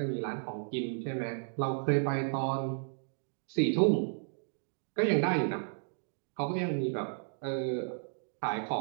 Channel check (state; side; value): silent; left; digital silence